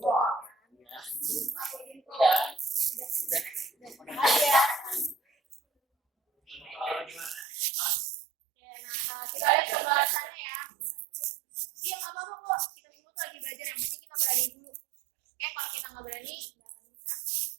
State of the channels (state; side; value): drops out; left; at 7.5 s